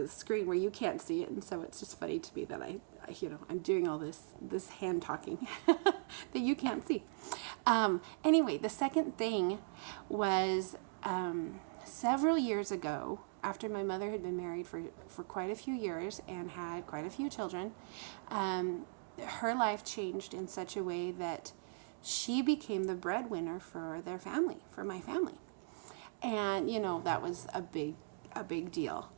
screen where you can't see it, and so it's just funny to me that I'm doing all this hand talking that you can't see. Anyway, the second thing was several years ago, after my mother had been married for quite a few years and had quite a few children, her life changed in such a way that she became the breadwinner for their family, for my family. And, that was a big deal.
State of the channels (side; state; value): left; silent; digital silence